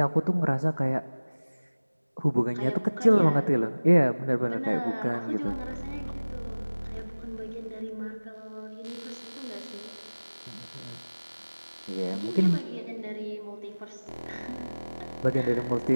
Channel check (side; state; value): both; inverted; correlation -1.00